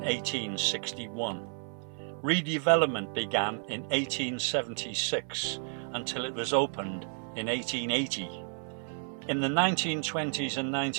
Redevelopment began in 1876 until it was opened in 1880. In the 1920s and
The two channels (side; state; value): left; silent; 57 dB below the other